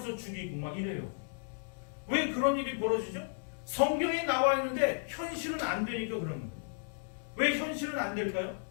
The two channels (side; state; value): right; silent; digital silence